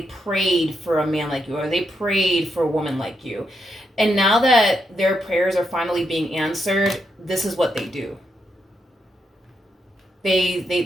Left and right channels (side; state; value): both; normal; correlation 0.81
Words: prayed for a man like you or they prayed for a woman like you. And now that their prayers are finally being answered, this is what they do.